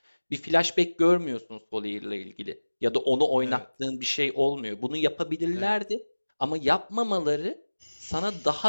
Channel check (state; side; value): inverted; both; correlation -1.00